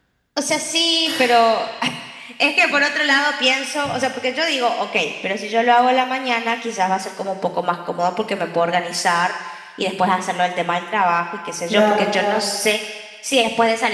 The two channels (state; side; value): identical; both; correlation 1.00